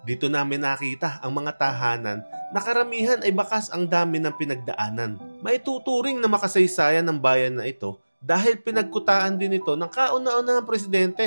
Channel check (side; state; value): both; inverted; correlation -1.00